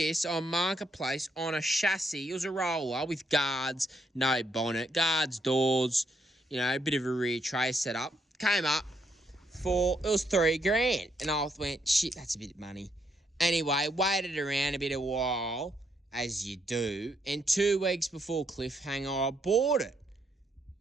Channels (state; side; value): normal; both; correlation 0.75